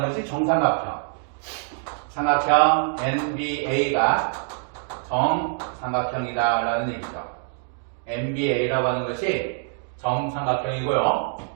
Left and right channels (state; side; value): silent; left; 62 dB below the other